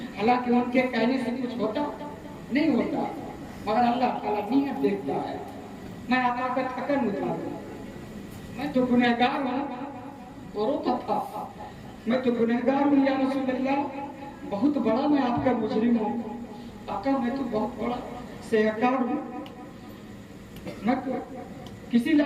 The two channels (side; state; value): both; identical; correlation 1.00